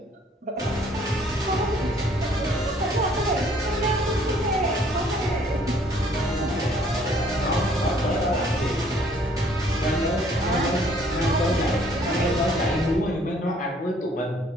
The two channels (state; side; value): normal; both; correlation 0.60